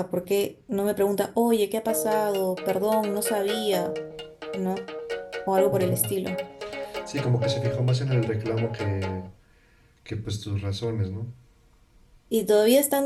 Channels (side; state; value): both; identical; correlation 1.00